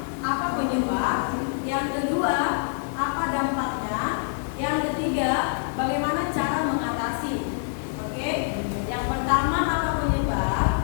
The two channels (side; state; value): right; silent; 61 dB below the other